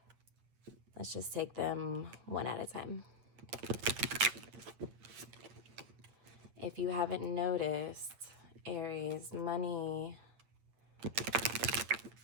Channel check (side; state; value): left; late; 8.6 ms